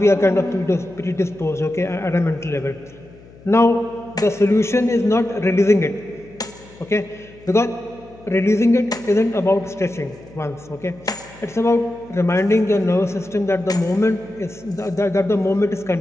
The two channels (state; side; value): noise; left; hum, 23 dB below the sound